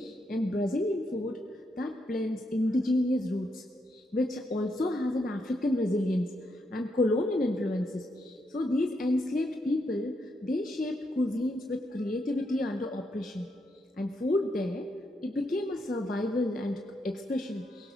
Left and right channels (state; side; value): normal; both; correlation 0.80